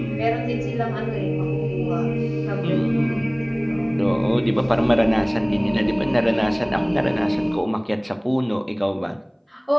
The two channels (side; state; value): both; identical; correlation 1.00